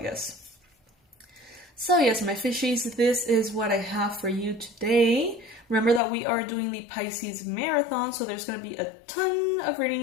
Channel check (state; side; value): drops out; right; at 6.0 s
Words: So yes, my fishies, this is what I have for you today. Remember that we are doing the Pisces Marathon, so there's going to be a ton of